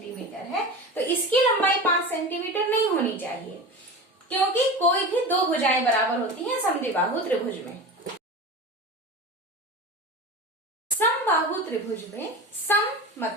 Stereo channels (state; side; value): normal; both; correlation 0.30